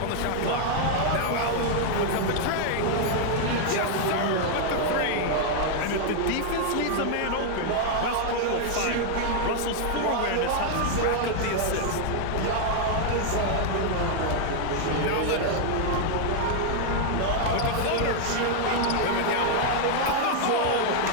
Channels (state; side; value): different; both; correlation 0.00